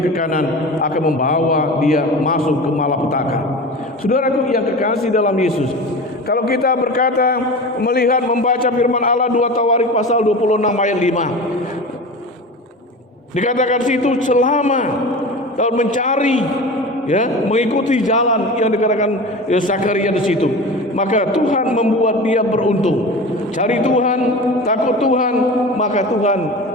ke kanan, akan membawa dia masuk ke malapetaka. Saudaraku yang kekasih dalam Yesus, kalau kita berkata melihat membaca firman Allah 2 Tawarik pasal 26 ayat 5, dikatakan situ selama tahun mencari mengikuti jalan yang dikatakan Zakaria di situ, maka Tuhan membuat dia beruntung. Cari Tuhan, takut Tuhan, maka Tuhan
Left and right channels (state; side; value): normal; both; correlation 0.32